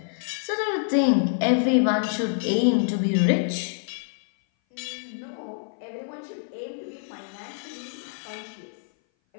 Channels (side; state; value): right; silent; 58 dB below the other